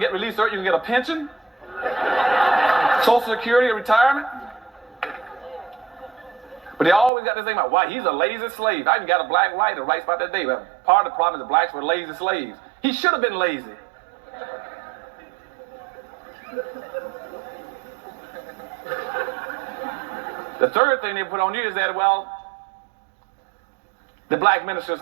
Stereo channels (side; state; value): left; drops out; at 7.1 s